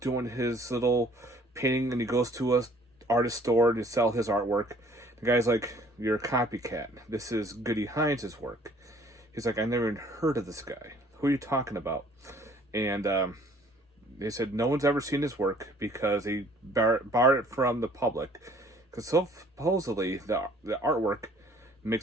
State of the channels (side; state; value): both; normal; correlation 0.57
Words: doing his little painting, and he goes to a artist store to sell his artwork. The guy's like, "You're a copycat. This is Goody Hines' work." He's like, "I never even heard of this guy. Who are you talking about?" And they said no one's ever seen his work because he barred it from the public. Because supposedly the artwork